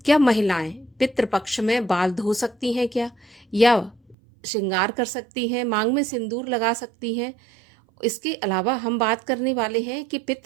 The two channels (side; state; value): left; drops out; at 4.2 s